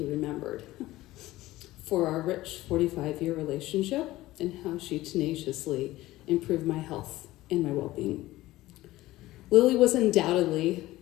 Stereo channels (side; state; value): right; quieter; 17.1 dB